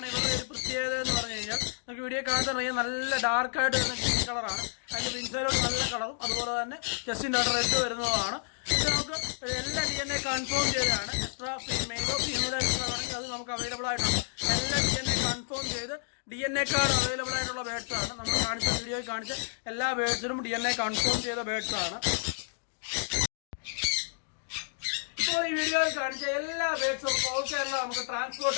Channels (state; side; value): silent; right; digital silence